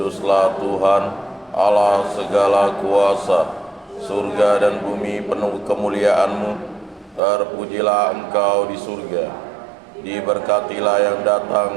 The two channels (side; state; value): left; drops out; at 7.2 s